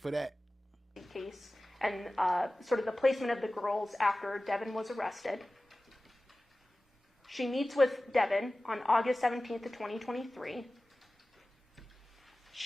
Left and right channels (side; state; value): both; normal; correlation 0.97